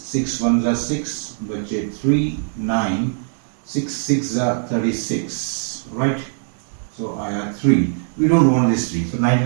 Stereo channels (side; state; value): left; silent; digital silence